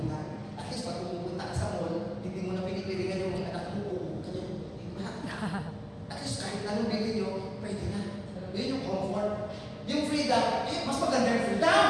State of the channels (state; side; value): identical; both; correlation 1.00